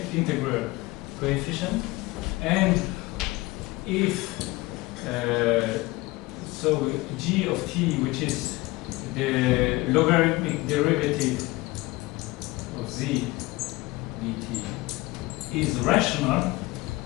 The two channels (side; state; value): right; quieter; 21.1 dB